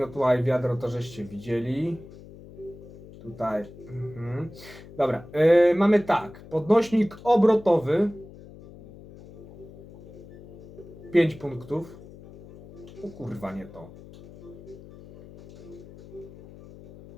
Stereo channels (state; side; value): noise; left; hum, 18 dB below the sound